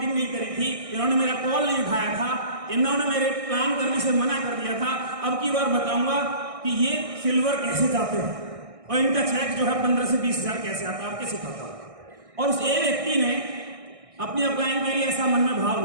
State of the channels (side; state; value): left; late; 1.6 ms